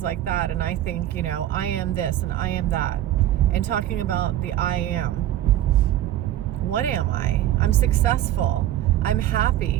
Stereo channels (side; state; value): left; quieter; 12.8 dB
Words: like that, and I think, I am this and I am that, and talking about the I am, what am I? I'm successful, I'm